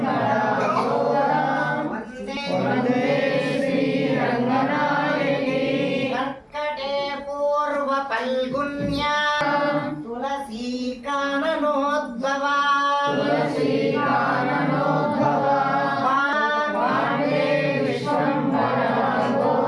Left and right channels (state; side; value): identical; both; correlation 1.00